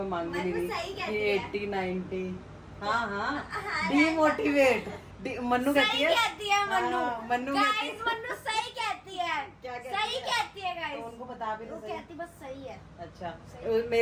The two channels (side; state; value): both; identical; correlation 1.00